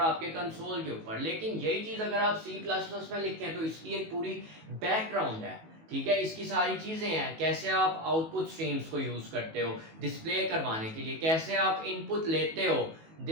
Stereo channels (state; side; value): late; left; 19 ms